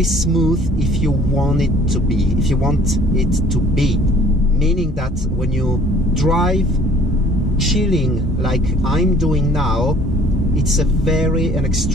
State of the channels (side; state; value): both; normal; correlation 0.54